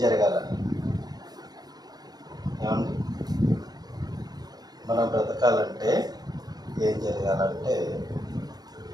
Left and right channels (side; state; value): left; late; 0.19 ms